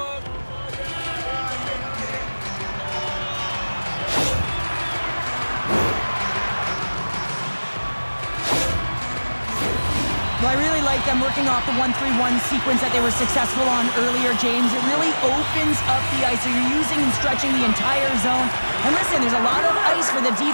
Well, I really like them working off the 1-3-1 sequence that they were successful on earlier, James. It really opens up the ice. So you're using and stretching the entire zone. And listen, there's a lot of ice for the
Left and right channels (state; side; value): inverted; both; correlation -1.00